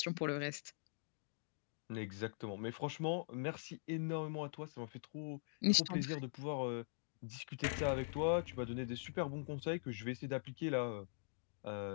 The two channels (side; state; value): right; silent; digital silence